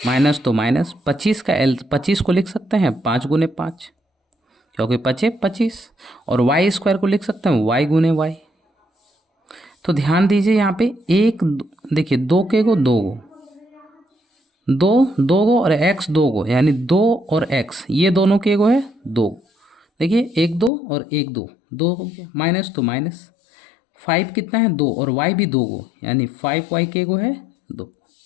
माइनस तो माइनस 25 का 25 को लिख सकते हैं 5 गुने 5, क्योंकि 25, और वाई स्क्वायर को लिख सकते हैं वाई गुने वाई। तो ध्यान दीजिए यहाँ पे एक देखिए 2 के गो 2 गो, 2 गो और एक्स 2 गो, यानी 2 और एक्स ये दोनों के गो है 2। देखिए 1 2 और 1 2, 2 हो गया, माइनस तो माइनस 5 कितना है 2, और वाई भी 2 गो, यानी 5 वाई के गो है 2।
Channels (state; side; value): drops out; right; at 20.7 s